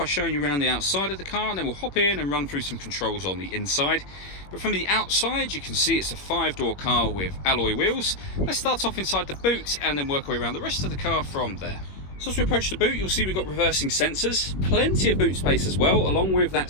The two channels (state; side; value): late; right; 21 ms